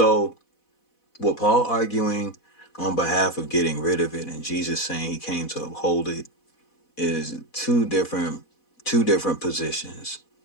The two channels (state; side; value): late; right; 4.1 ms